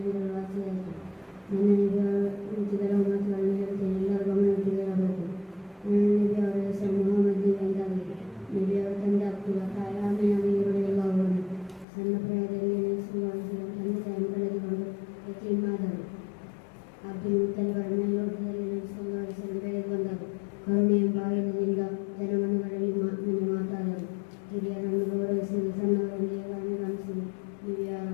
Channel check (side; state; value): right; drops out; at 11.9 s